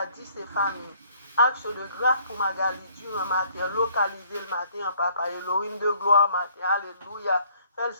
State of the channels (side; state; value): both; inverted; correlation -0.61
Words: et famille. Action de grâce pour Magali Durand matin, localiser le matin, papa, Elohim de gloire matin, alléluia. Fais le